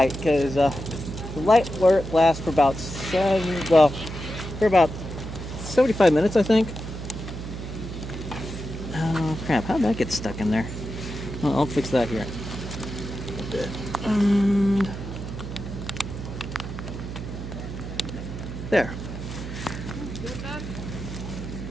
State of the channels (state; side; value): noise; right; hum, 8 dB below the sound